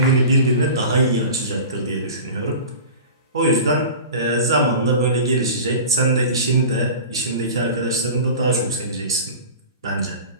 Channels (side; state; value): both; inverted; correlation -0.35